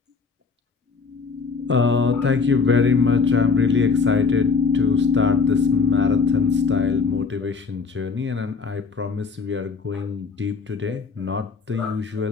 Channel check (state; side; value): quieter; right; 4.9 dB